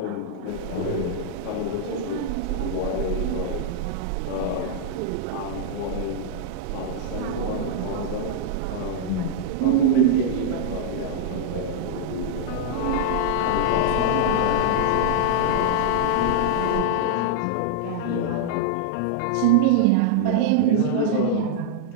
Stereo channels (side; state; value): both; different; correlation -0.01